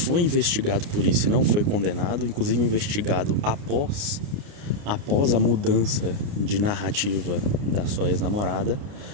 investigado por isso e não foi condenado, inclusive investigado após a mudança de narrativa da sua ex-namorada.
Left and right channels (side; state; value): left; late; 29 ms